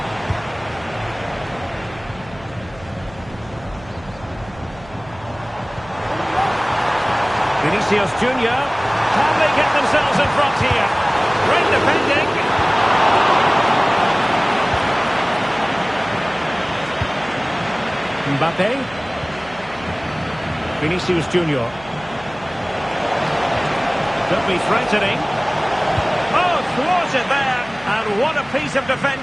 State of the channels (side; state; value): right; noise; hum, 21 dB below the sound